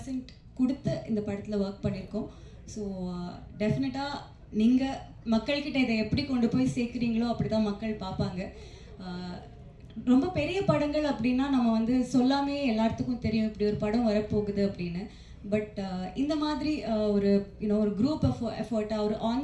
கொடுத்து இந்த படத்தில் ஒர்க் பண்ணியிருக்கோம். ஸோ டெஃபினட்டாக நீங்கள் மக்கள்கிட்ட இதை எப்படி கொண்டு போய் சேர்க்குறீங்களோ அப்படி தான் மக்கள் பார்ப்பாங்க. ரொம்ப பெரிய படங்கள் அப்படின்னா நம்ம வந்து சொல்லாமே எல்லாத்துக்கும் தெரியும் இப்படி ஒரு படம் வரப்போகுது அப்படின்னு. பட் இந்த மாதிரி ஒரு ஒரு குரூப் எஃபர்ட்டாக, ஒரு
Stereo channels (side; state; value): both; identical; correlation 1.00